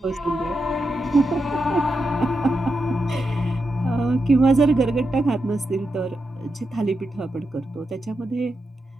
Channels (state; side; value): normal; both; correlation 0.86